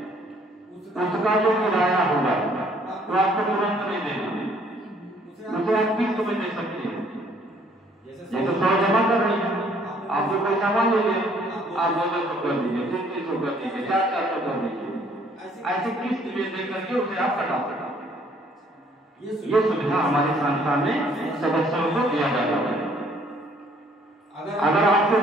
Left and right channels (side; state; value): both; normal; correlation 0.62